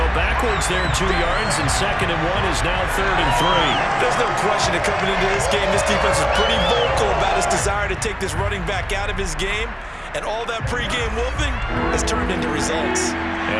backwards there 2 yards, and 2nd and 1 is now 3rd and 3. There's no question that coming into this game, this defense is pretty vocal about his desire to take this running back out of his game. And all that pregame whooping has turned into results.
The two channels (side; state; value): both; identical; correlation 1.00